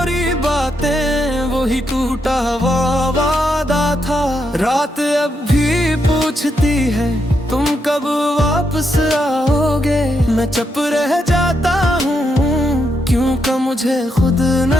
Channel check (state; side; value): normal; both; correlation 0.81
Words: बातें, वही टूटा हुआ वादा था। रात अब भी पूछती है तुम कब वापस आओगे। मैं चुप रह जाता हूँ क्योंकि मुझे खुद